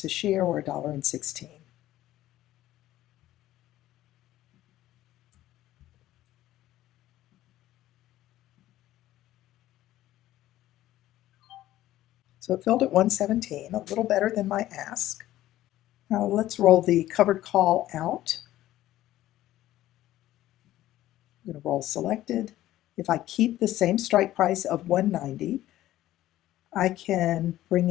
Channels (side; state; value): right; quieter; 14.5 dB